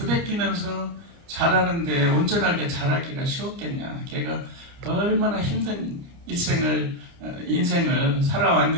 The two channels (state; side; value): late; left; 29 ms